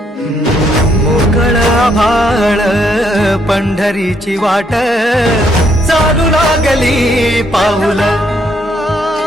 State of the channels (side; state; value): both; normal; correlation 0.72